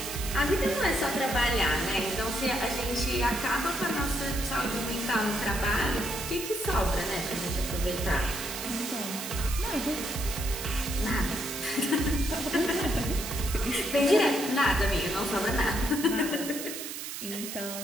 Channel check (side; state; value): right; noise; hiss, 7 dB below the sound